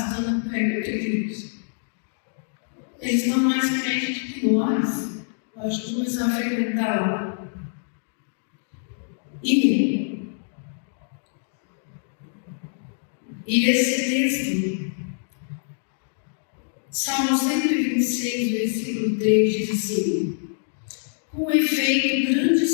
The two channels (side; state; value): right; silent; digital silence